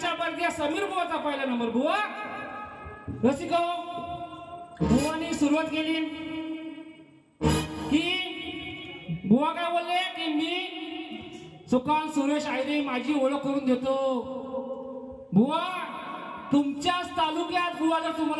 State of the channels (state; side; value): identical; both; correlation 1.00